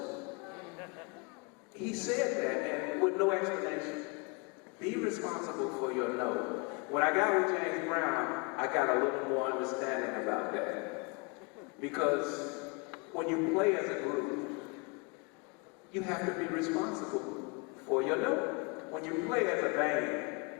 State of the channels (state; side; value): quieter; right; 31.5 dB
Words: He said that, and with no explanation. Be responsible for your note. When I got with James Brown, I got a little more understanding about that. Because when you play as a group, you have to be responsible for your note. When you play as a